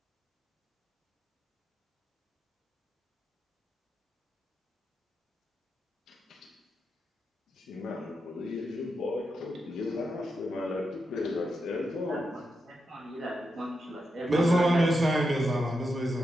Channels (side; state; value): both; normal; correlation 0.86